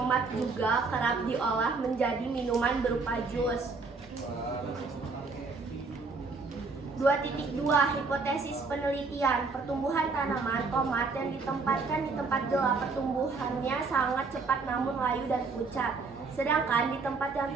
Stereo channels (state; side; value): quieter; left; 4.2 dB